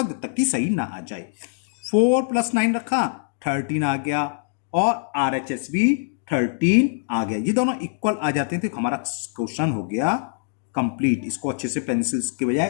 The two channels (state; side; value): silent; right; digital silence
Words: जब तक कि सही ना आ जाए। 4 प्लस 9 रखा, 13 आ गया, और RHS भी 13 आ गया, ये दोनों इक्वल आ जाते हैं, तो हमारा क्वेश्चन हो गया कंप्लीट। इसको अच्छे से पेंसिल्स के बजाय